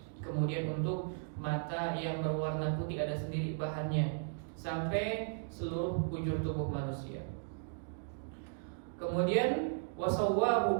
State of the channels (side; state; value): left; silent; digital silence